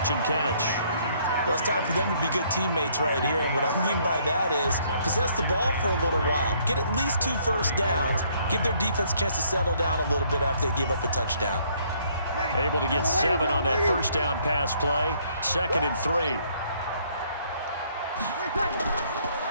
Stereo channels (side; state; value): both; inverted; correlation -0.65